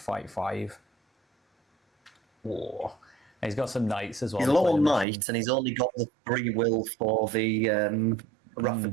5. Whoa. And he's got some knights as well. He's a low on knights, and he's only got the 3 will for the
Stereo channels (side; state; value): left; drops out; at 5.1 s